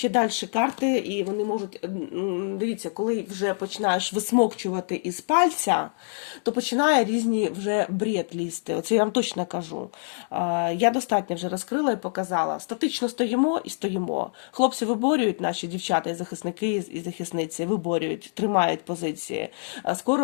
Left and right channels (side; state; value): right; silent; digital silence